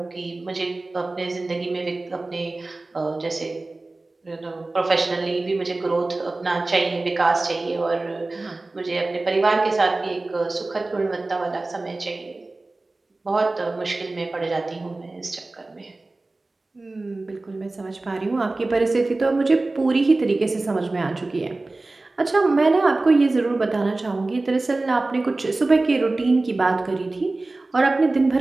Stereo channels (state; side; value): quieter; left; 3.1 dB